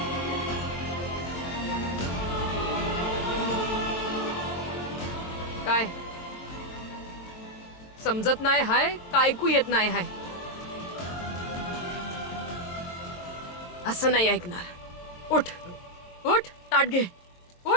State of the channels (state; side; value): late; right; 23 ms